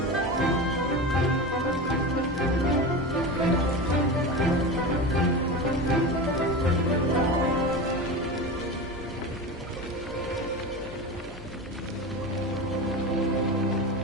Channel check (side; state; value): both; normal; correlation 0.25